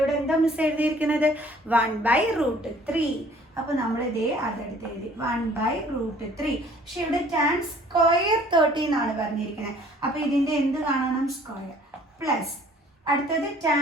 എന്താ മിസ് എഴുതിയിരിക്കുന്നത്, 1/√3. അപ്പോൾ നമ്മൾ ഇതേ അതെടുത്ത് എഴുതി 1/√3. പക്ഷെ ഇവിടെ tan square 30 എന്നാണ് പറഞ്ഞിരിക്കുന്നത്. അപ്പോൾ ഇതിൻ്റെ എന്ത് കാണണം, സ്ക്വയർ. പ്ലസ് അടുത്തത്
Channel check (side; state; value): both; normal; correlation 0.55